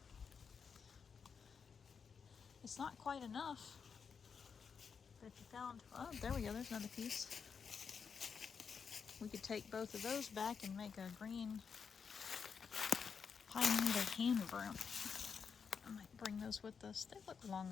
It's not quite enough, but if you found, oh, there we go, there's another piece. We could take both of those back and make a green pine needle hand broom. I might bring those with us. They look long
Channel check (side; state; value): right; quieter; 6.2 dB